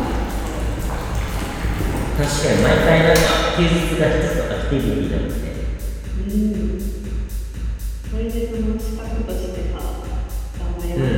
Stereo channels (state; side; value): identical; both; correlation 1.00